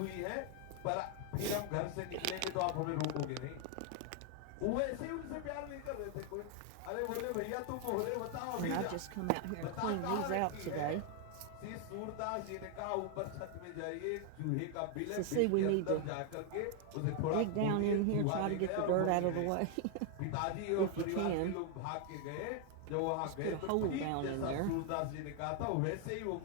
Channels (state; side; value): different; both; correlation 0.00